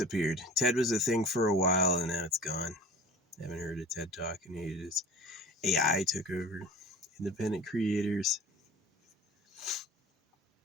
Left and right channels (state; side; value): normal; both; correlation 0.40